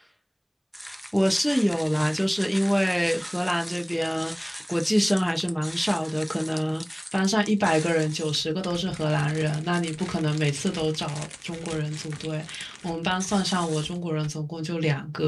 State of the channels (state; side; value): identical; both; correlation 1.00